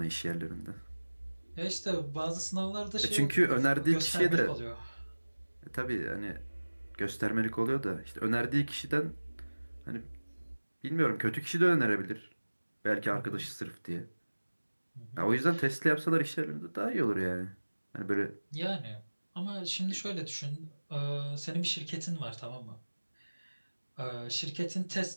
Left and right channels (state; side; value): inverted; both; correlation -1.00